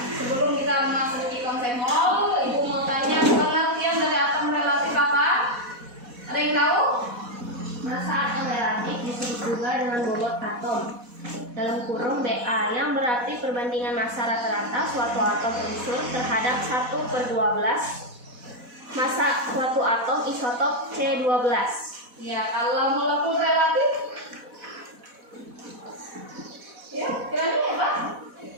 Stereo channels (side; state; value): left; late; 4.1 ms